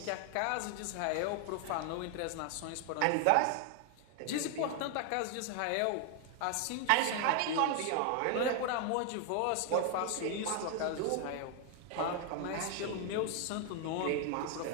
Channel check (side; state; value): both; different; correlation 0.00